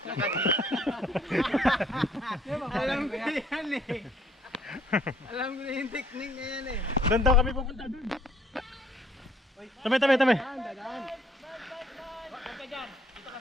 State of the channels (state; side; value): normal; both; correlation 0.62